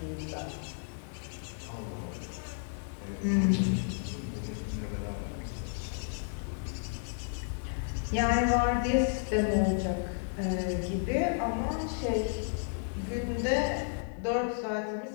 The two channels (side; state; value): right; silent; digital silence